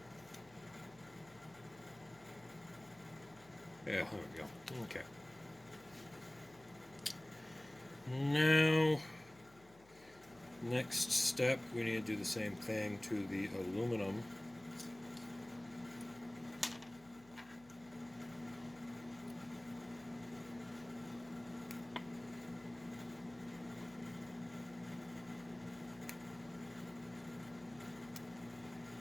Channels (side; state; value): left; noise; hum, 24 dB below the sound